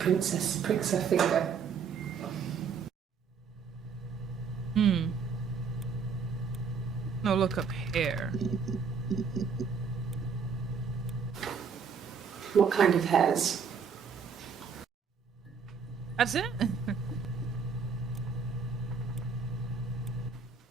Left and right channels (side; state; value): left; quieter; 5.9 dB